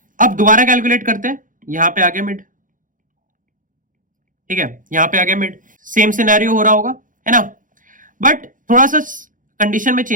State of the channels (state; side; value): late; left; 0.39 ms